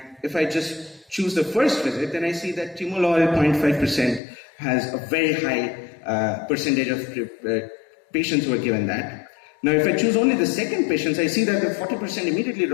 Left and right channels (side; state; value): right; drops out; at 4.2 s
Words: if I just choose the first visit, then I see that timolol 0.5% has a very high percentage of patients who are given that. Now, if I choose only the second patients, I see that the 40% immediately